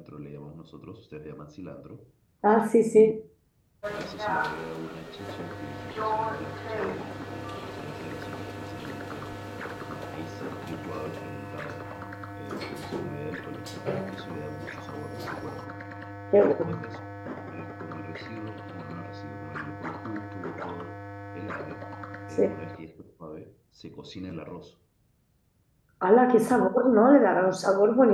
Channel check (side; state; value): both; identical; correlation 1.00